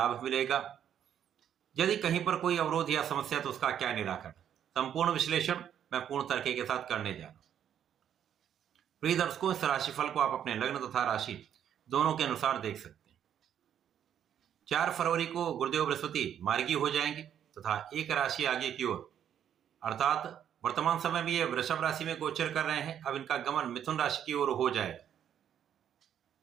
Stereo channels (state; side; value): quieter; left; 9.5 dB